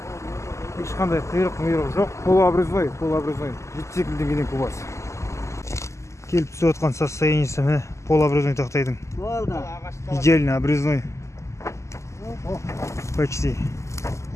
Ешқандай қиырық жоқ. Полуобрезной. 72 мың теңгеден кубасы. Келіп түсіп жатқан состояниесі міне полуобрезной тақтайдың. Идеально обрезной. Почти.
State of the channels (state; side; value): late; right; 0.14 ms